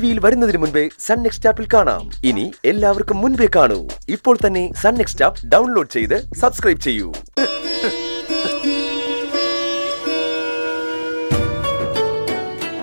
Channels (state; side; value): inverted; both; correlation -1.00